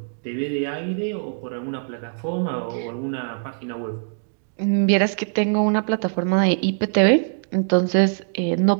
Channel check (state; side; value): silent; left; digital silence